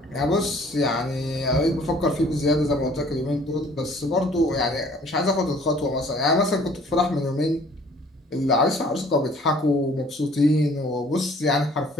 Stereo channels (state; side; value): normal; both; correlation 0.55